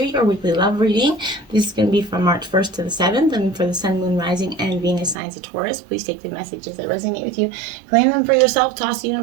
your weekly love reading. This is going to be from March 1st to the 7th, and for the Sun, Moon, Rising, and Venus signs of Taurus. Please take the messages that resonate with you, claim them for yourself, toss the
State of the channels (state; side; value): drops out; left; at 5.2 s